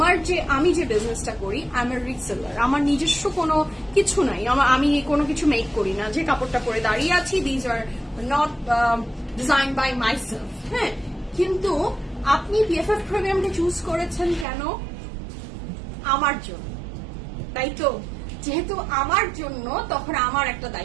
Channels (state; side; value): drops out; left; at 14.5 s